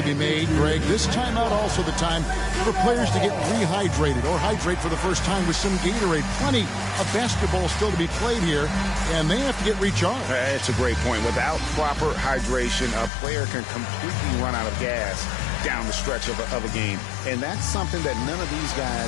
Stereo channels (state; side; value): drops out; right; at 13.1 s